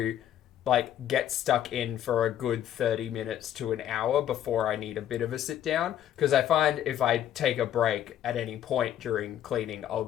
get stuck in for a good 30 minutes to an hour before I need a bit of a sit down. Because I find if I take a break at any point during cleaning, I'll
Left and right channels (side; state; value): right; quieter; 11.1 dB